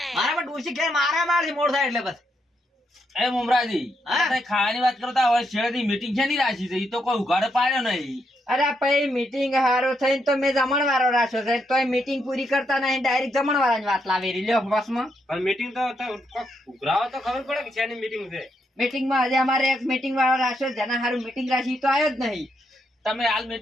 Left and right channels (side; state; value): both; normal; correlation 0.79